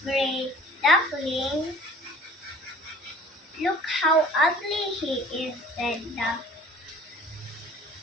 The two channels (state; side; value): normal; both; correlation 0.49